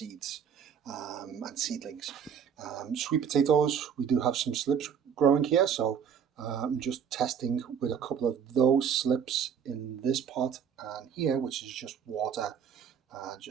and seedlings. Sweet potatoes, we do have some slips growing here, so I'm just testing with a couple of those slips in this pot and here, which is just water,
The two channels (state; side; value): quieter; left; 7.6 dB